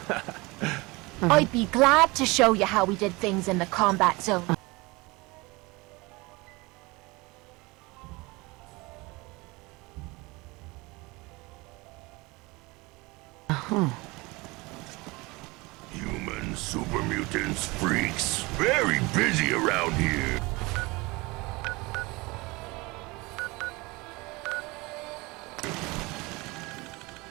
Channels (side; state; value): left; quieter; 24.0 dB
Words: I'd be glad to show you how we did things in the combat zone. Human super mutants, freaks, very busy around here.